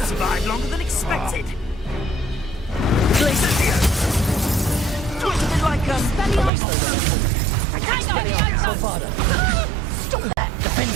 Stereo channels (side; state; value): left; drops out; at 6.5 s